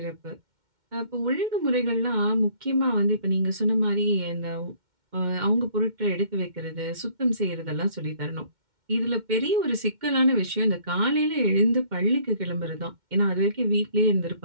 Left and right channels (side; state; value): left; late; 2.1 ms